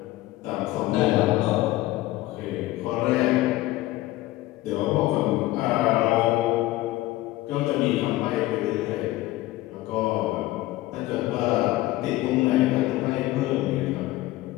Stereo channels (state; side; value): quieter; right; 17.1 dB